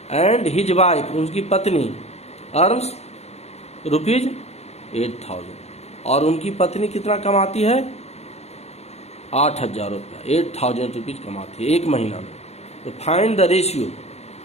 एंड हिज वाइफ, उनकी पत्नी, अर्न्स रुपीज 8,000, और उनकी पत्नी कितना कमाती है, 8,000 रुपया, 8,000 रुपीज कमाती है एक महीना में। तो find the ratio,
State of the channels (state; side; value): late; right; 0.31 ms